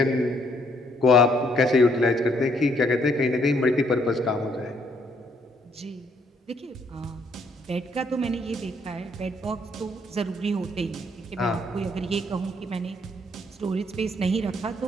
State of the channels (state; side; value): normal; both; correlation 0.68